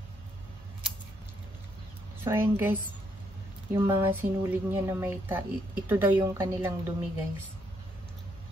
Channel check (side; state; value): both; normal; correlation 0.74